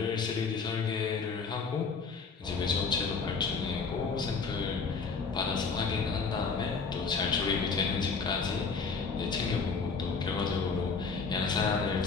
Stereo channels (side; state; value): right; quieter; 4.9 dB